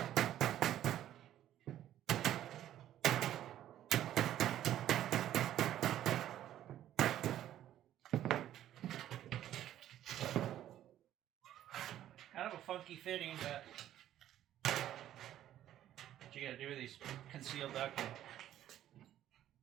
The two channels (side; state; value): left; quieter; 12.1 dB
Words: Kind of a funky fitting, but what you gotta do with these concealed ducting.